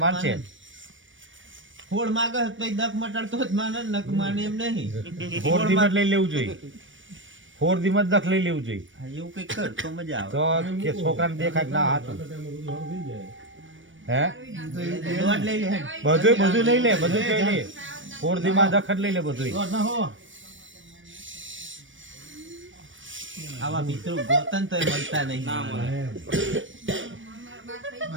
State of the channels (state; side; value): late; left; 0.56 ms